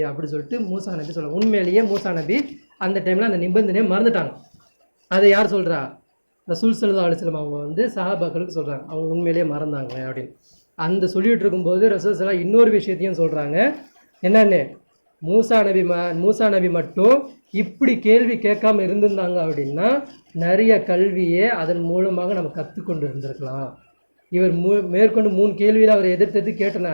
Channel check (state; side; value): inverted; both; correlation -1.00